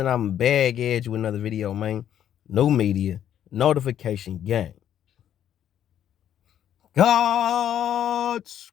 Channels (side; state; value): right; quieter; 10.3 dB